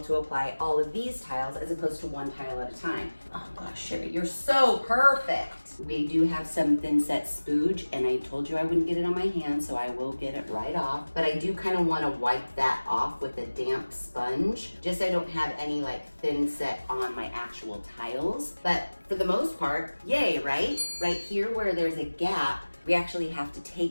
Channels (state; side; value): inverted; both; correlation -1.00